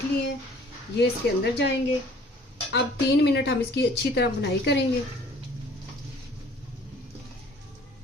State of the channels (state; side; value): normal; both; correlation 0.53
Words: लिए हैं। ये इसके अंदर जाएंगे। अब 3 मिनट हम इसकी अच्छी तरह बुनाई करेंगे।